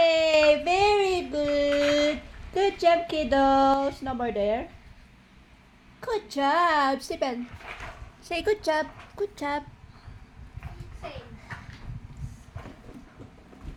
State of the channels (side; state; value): both; identical; correlation 1.00